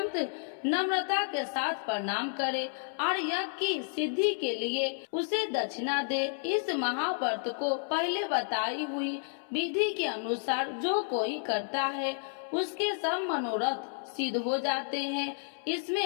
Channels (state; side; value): silent; right; 57 dB below the other